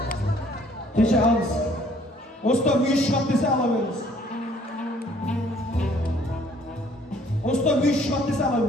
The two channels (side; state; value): both; normal; correlation 0.60